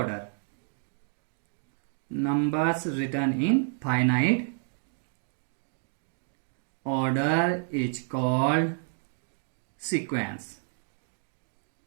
Numbers return in finite order is called sequence।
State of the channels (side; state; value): left; silent; 58 dB below the other